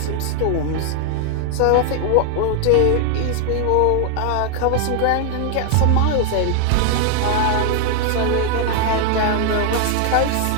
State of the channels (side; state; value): both; different; correlation 0.00